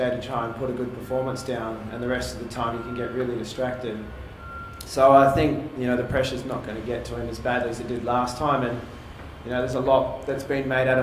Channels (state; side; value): identical; both; correlation 1.00